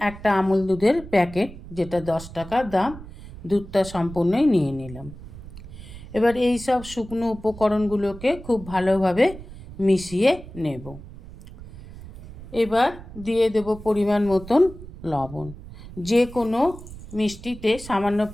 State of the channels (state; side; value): noise; right; rumble, 15 dB below the sound